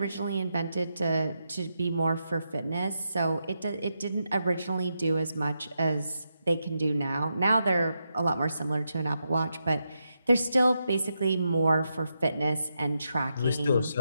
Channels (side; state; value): both; inverted; correlation -0.85